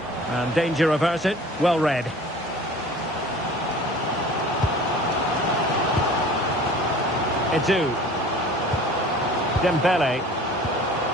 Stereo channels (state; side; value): normal; both; correlation 0.45